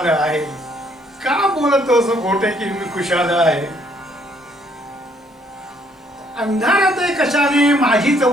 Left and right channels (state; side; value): normal; both; correlation 0.67